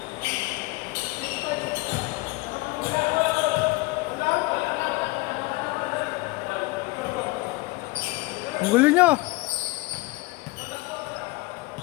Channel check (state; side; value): quieter; right; 22.8 dB